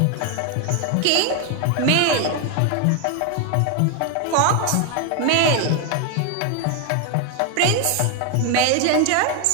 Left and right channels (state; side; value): different; both; correlation 0.01